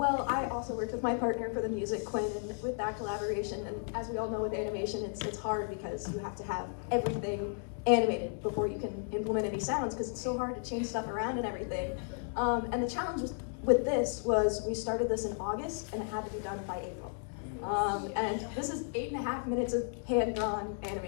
I also worked with my partner for the music, Quinn, and with that collaboration, and as we all know with animation, it's hard because you have to have everything animated before you can implement any sounds, because it's so hard to change stuff around and everything. And the challenge with this was we started this in August, and it had to be done by April. And this is 8.5 minutes of hand-drawn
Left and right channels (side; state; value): right; silent; 55 dB below the other